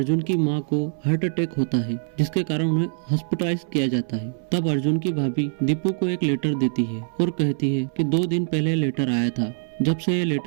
की माँ को हार्ट अटैक होता है, जिसके कारण उन्हें हॉस्पिटलाइज किया जाता है। तब अर्जुन की भाभी दीपू को एक लेटर देती है और कहती है कि 2 दिन पहले लेटर आया था। जब से ये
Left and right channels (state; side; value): silent; left; 63 dB below the other